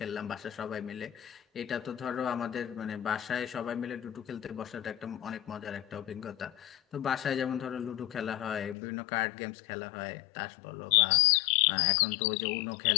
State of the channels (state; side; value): drops out; right; at 8.8 s